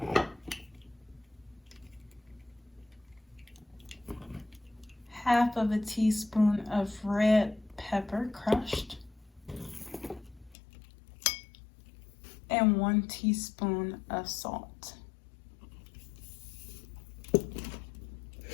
half of a teaspoon of red pepper crushed, and 1 teaspoon of salt.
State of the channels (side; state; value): right; drops out; at 10.6 s